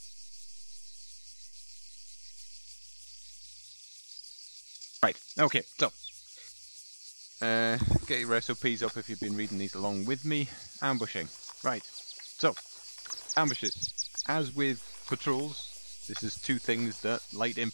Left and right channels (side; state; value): both; inverted; correlation -1.00